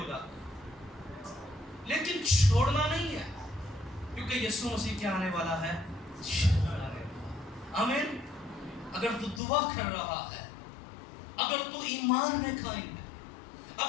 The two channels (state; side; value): drops out; right; at 9.4 s